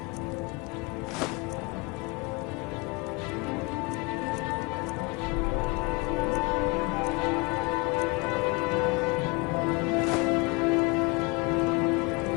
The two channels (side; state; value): right; quieter; 27.5 dB